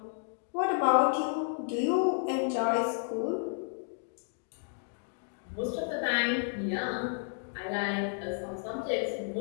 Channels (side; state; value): right; silent; digital silence